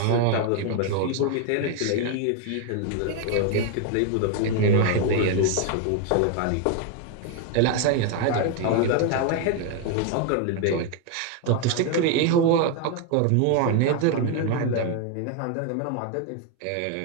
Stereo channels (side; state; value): both; different; correlation 0.01